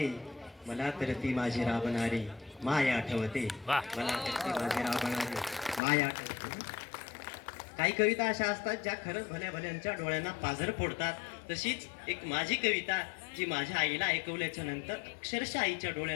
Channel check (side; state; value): right; drops out; at 5.8 s